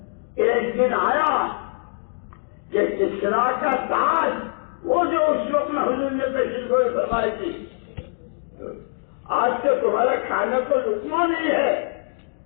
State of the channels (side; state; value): right; silent; digital silence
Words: ایک دن آیا کہ کسرا کا تاج، وہ جو اس وقت میں حضور نے پیشن گوئی فرمائی تھی، آج تو تمہارا کھانے کو لقمہ نہیں ہے،